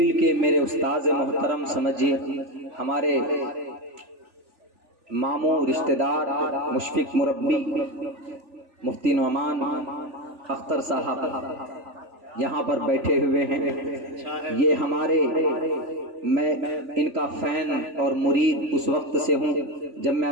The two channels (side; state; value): left; late; 3.4 ms